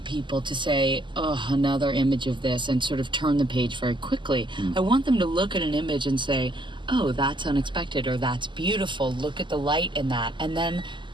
people to say, oh, another image of this, and sort of turn the page very quickly. I want them to look at an image and say, oh, that's unexpected, or that's beautiful, look at the light in that, and then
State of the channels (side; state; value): left; late; 0.23 ms